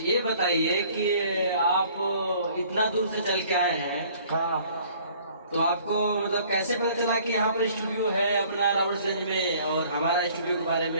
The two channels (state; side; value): inverted; both; correlation -0.55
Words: ये बताइए कि आप इतना दूर से चल के आए हैं, हाँ, तो आपको मतलब कैसे पता चला कि यहाँ पर स्टूडियो है अपना रावटगंज में और हमारा स्टूडियो के बारे